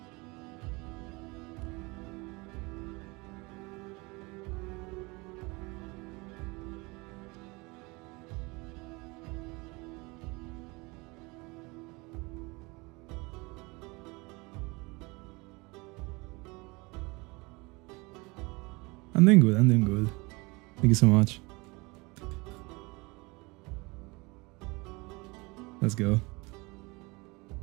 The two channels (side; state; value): left; quieter; 25.7 dB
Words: I'm doing good, Thank you so much. Let's go.